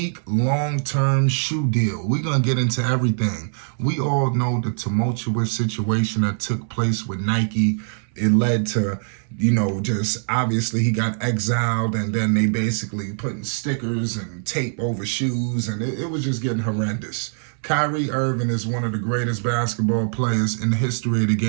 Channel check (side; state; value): left; silent; 64 dB below the other